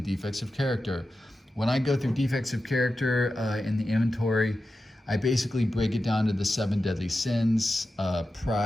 defects of character. When I go through defects of character in the inventory, I basically break it down to the 7 deadly sins:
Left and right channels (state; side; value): normal; both; correlation 0.92